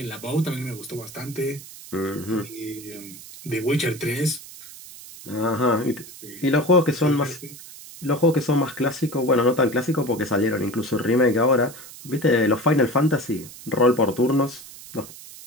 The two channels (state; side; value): noise; right; hiss, 16 dB below the sound